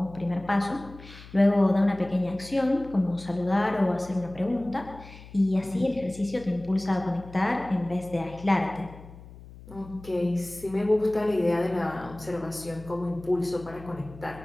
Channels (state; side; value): noise; left; hum, 18 dB below the sound